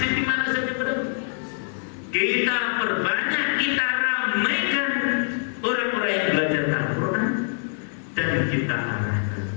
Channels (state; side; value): silent; right; 62 dB below the other